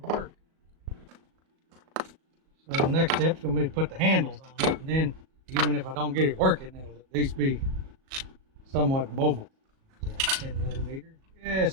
work. So the next step is going to be to put the handles on it, and then Even if I don't get it working, it'll at least be somewhat mobile. Is that 10 millimeter?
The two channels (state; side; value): late; left; 37 ms